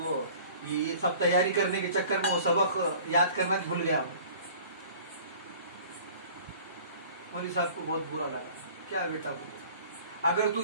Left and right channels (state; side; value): inverted; both; correlation -0.47